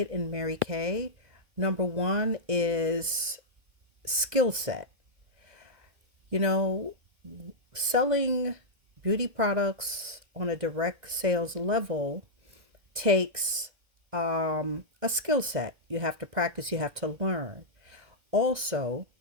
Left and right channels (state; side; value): late; left; 2.1 ms